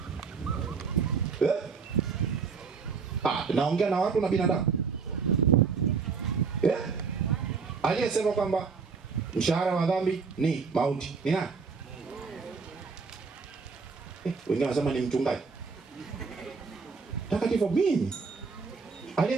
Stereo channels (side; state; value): left; quieter; 5.2 dB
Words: Naongea na watu na binadamu. Aliyesema kwamba mshahara wa dhambi ni mauti ni nani? Wengine wanasema ni mchungaji. Takatifu mimi.